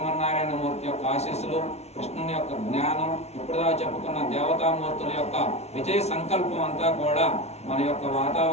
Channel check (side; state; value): right; late; 0.31 ms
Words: యొక్క ఆశీస్సులు, కృష్ణుని యొక్క జ్ఞానం, ఇప్పుడుదా చెప్పుకున్న దేవతామూర్తుల యొక్క విజయ సంకల్పం అంతా కూడా మన యొక్క